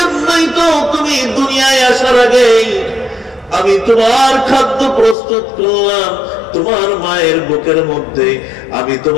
তো তুমি দুনিয়ায় আসার আগেই আমি তোমার খাদ্য প্রস্তুত করলাম। তোমার মায়ের বুকের মধ্যে আমি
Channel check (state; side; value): drops out; right; at 5.2 s